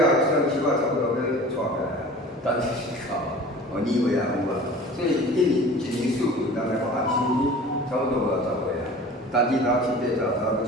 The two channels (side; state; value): both; normal; correlation 0.42